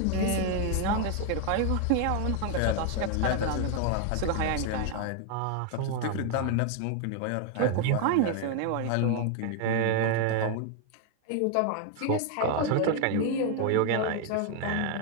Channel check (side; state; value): both; different; correlation 0.01